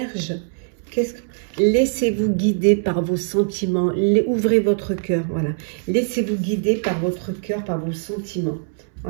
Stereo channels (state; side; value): silent; left; 64 dB below the other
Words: laissez-vous guider par vos sentiments, ouvrez votre cœur, voilà. Laissez-vous guider par votre cœur, par vos sentiments.